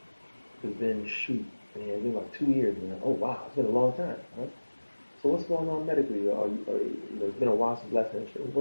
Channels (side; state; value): both; inverted; correlation -1.00